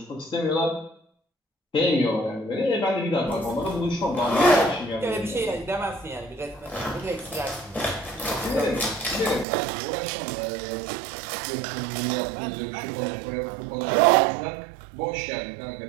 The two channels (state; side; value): drops out; left; at 9.5 s